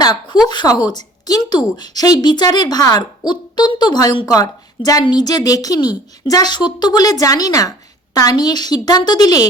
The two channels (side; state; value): both; normal; correlation 0.51